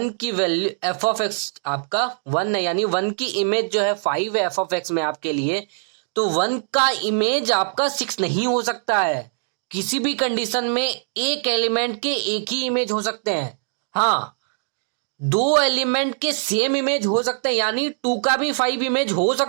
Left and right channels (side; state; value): left; silent; digital silence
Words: की वैल्यू एफ ऑफ एक्स आपका 1 है, यानी वन की इमेज जो है 5 है एफ ऑफ एक्स में आपके लिए। तो वन का इमेज आपका 6 नहीं हो सकता है। किसी भी कंडीशन में एक एलिमेंट के एक ही इमेज हो सकते हैं। हाँ, दो एलिमेंट के सेम इमेज हो सकते हैं, यानी 2 का भी 5 इमेज हो